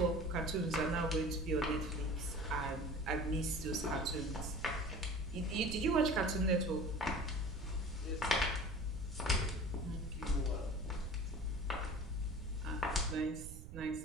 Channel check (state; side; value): noise; right; rumble, 10 dB below the sound